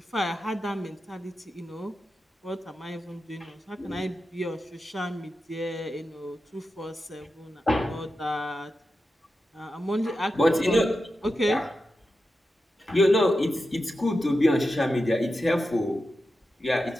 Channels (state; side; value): normal; both; correlation 0.90